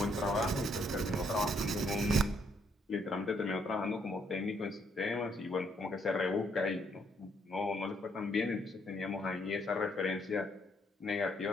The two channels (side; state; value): both; normal; correlation 0.71